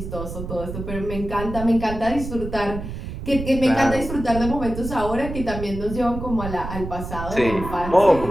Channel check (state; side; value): noise; right; rumble, 8 dB below the sound